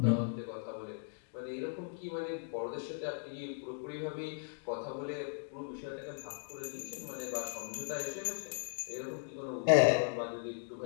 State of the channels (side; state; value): right; silent; digital silence